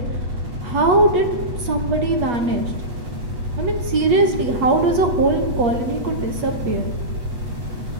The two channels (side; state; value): left; late; 8.3 ms